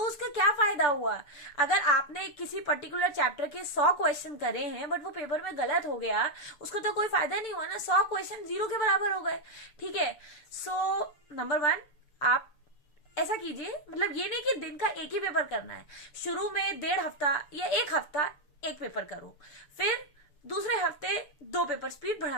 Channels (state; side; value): late; right; 6.8 ms